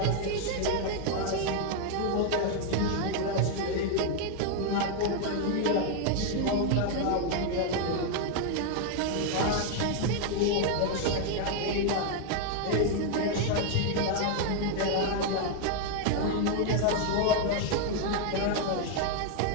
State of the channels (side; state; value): both; different; correlation 0.01